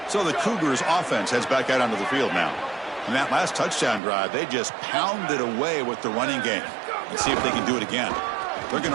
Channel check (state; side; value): drops out; left; at 4.0 s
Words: So the Cougars offense heads back out onto the field now. In that last touchdown drive, they just pounded away with the running game. Let's see if they can do it again. They're going